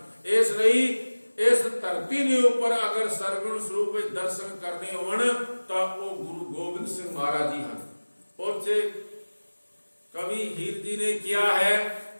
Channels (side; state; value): both; inverted; correlation -1.00